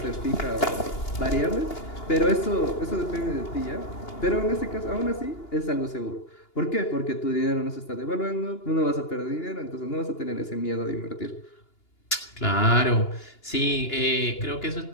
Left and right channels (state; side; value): late; right; 2.8 ms